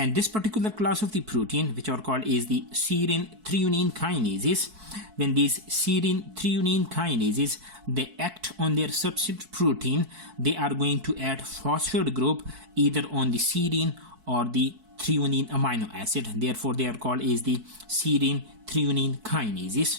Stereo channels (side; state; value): left; late; 4.6 ms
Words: this particular class of the protein, which are called is the serine threonine kinases, when these serine threonine kinases, they act on their substrate protein, they are going to add phosphate group either on the serine or the threonine amino acid. Therefore, they are called is the serine threonine